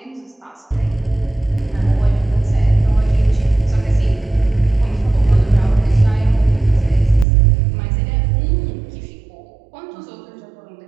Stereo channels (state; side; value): drops out; left; at 7.2 s